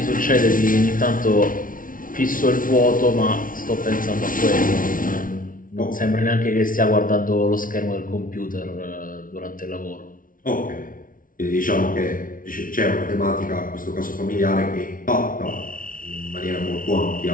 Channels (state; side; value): late; right; 0.39 ms